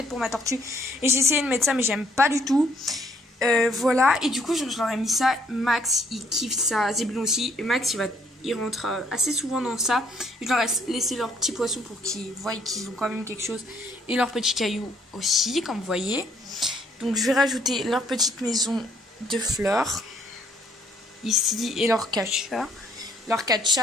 pour ma tortue. Et j'ai essayé de mettre ça mais j'aime pas du tout. Voilà, et du coup je leur ai mis ça. Max il kiffe ça, Zébulon aussi, et Max il rentre assez souvent dans ça. Je leur ai laissé leurs petits poissons pour qu'ils voient qu'ils ont quand même quelque chose, et leurs petits cailloux aussi, comme vous voyez. Donc je vais rajouter leur petite maison de fleurs ici et leur catcha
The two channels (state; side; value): normal; both; correlation 0.66